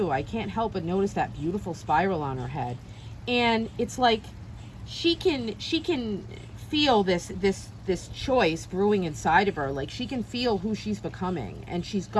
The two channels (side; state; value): both; identical; correlation 1.00